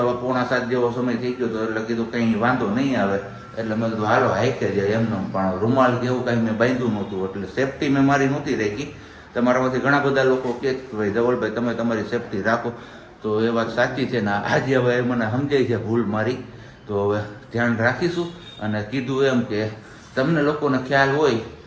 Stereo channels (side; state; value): both; identical; correlation 1.00